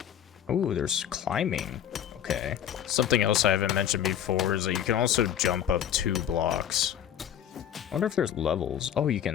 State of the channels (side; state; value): right; quieter; 9.8 dB